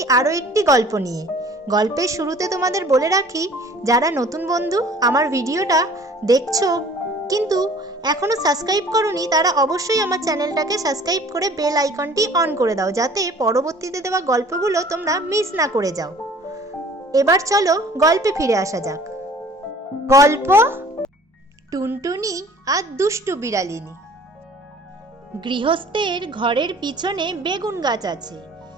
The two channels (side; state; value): both; normal; correlation 0.50